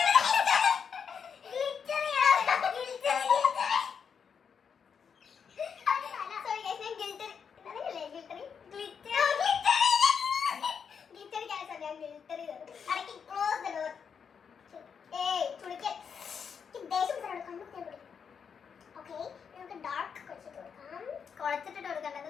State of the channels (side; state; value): right; quieter; 6.7 dB